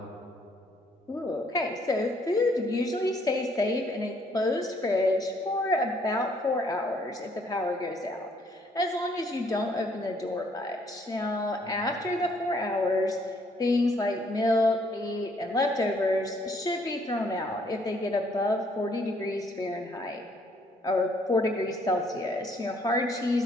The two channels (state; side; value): normal; both; correlation 0.66